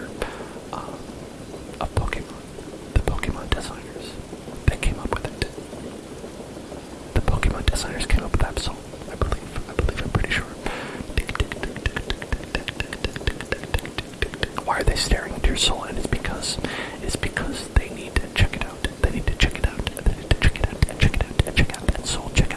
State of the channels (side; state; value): both; identical; correlation 1.00